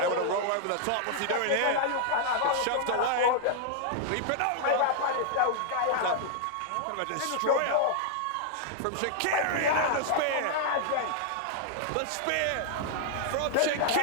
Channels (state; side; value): different; both; correlation -0.01